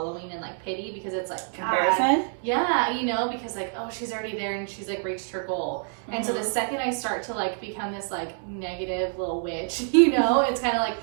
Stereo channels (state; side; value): silent; left; 60 dB below the other